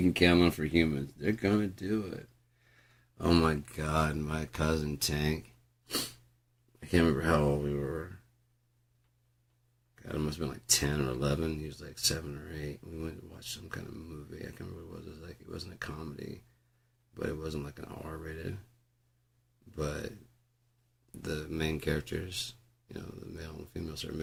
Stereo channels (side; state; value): both; identical; correlation 1.00